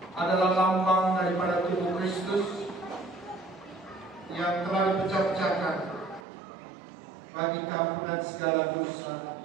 adalah lambang daripada tubuh Kristus yang telah dipecah-pecahkan bagi keampunan segala dosa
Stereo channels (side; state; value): left; drops out; at 6.2 s